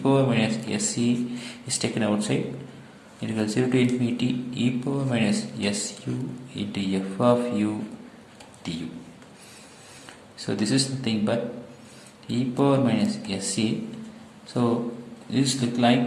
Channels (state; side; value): identical; both; correlation 1.00